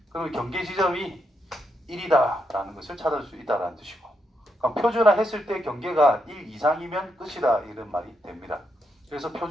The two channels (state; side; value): normal; both; correlation 0.81